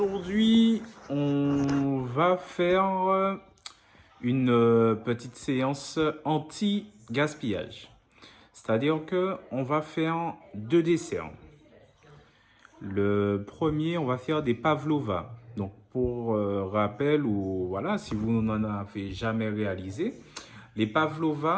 on va faire une petite séance anti-gaspillage. C'est-à-dire que on va faire deux desserts. Le premier, on va faire des pavlova. Donc pour rappel ou voilà, si vous n'en avez jamais réalisé, les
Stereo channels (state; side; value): identical; both; correlation 1.00